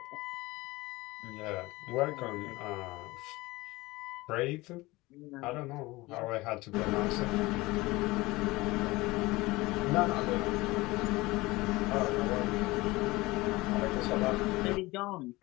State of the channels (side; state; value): right; quieter; 21.0 dB